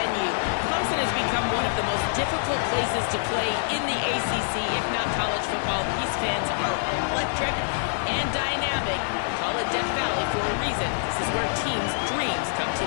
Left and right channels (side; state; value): right; silent; digital silence